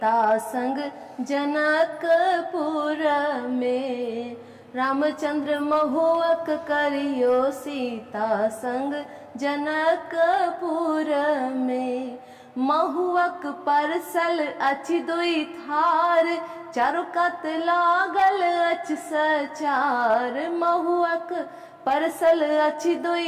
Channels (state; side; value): identical; both; correlation 1.00